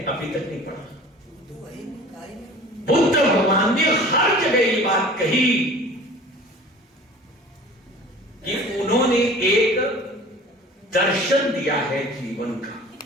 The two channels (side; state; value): both; normal; correlation 0.44